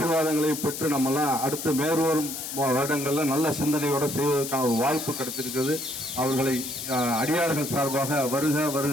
பெற்று நம்மெல்லாம் அடுத்து மேற்வரும் வருடங்களில் நல்ல சிந்தனையோடு செய்வதற்கான ஒரு வாய்ப்பு கிடைத்திருக்கிறது. அவர்களை அடியார்கள் சார்பாக வருக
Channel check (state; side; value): noise; left; hiss, 7 dB below the sound